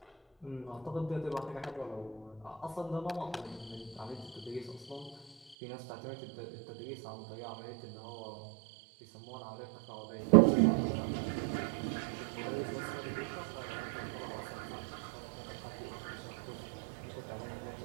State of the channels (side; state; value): left; drops out; at 5.6 s